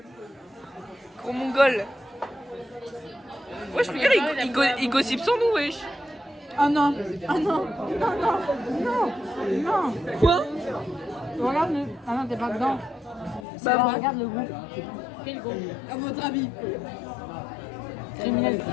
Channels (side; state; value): right; drops out; at 13.5 s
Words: Gros mongol. Wesh, regarde, il gossip sans nous, wesh. Oh non. Oh non. Non, non. Non. Non. Quoi? Regarde le... Ah non, t'es pas dedans. Bah, regarde le groupe. Quel groupe? À votre avis? Criminel.